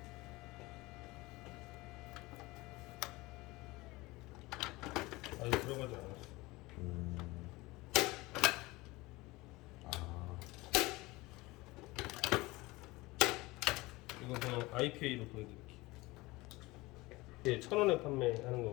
아직 들어가지 않았어. 이건 그냥 IPA로 보여드릴게요. 예, 1000원에 판매하는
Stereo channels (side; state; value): right; quieter; 21.4 dB